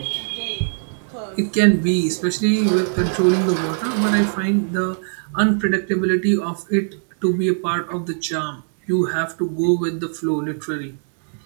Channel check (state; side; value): silent; left; digital silence